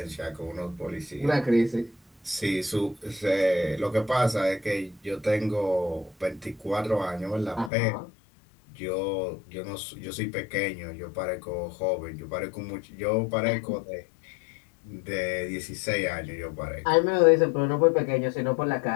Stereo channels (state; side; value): drops out; right; at 7.7 s